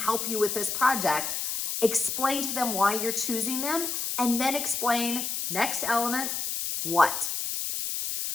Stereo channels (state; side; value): noise; left; hiss, 2 dB below the sound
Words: you with this project? Explain to them why you're choosing them, and then explain, next element, what.